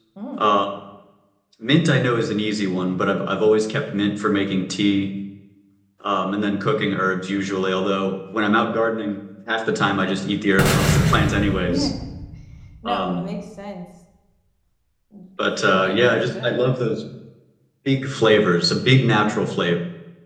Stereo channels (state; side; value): identical; both; correlation 1.00